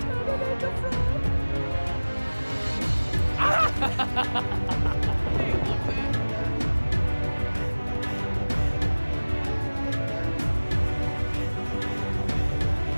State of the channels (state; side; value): inverted; both; correlation -1.00